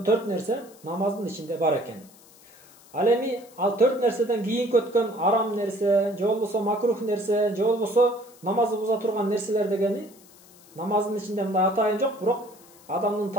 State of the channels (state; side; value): noise; left; hiss, 25 dB below the sound